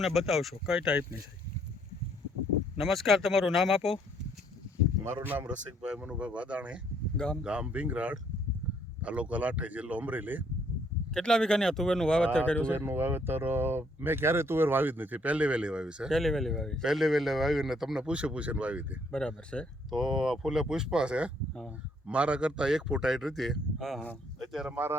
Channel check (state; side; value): normal; both; correlation 0.68